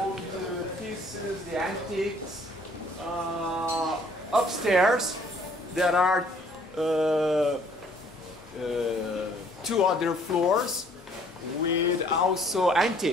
pieces, the antiques. Upstairs there are two other floors with also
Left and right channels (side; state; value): both; normal; correlation 0.60